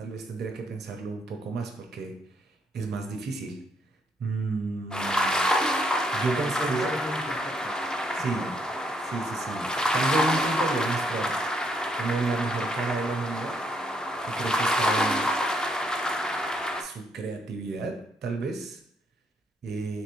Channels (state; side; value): normal; both; correlation 0.72